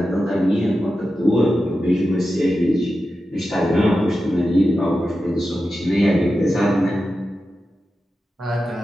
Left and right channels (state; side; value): normal; both; correlation 0.91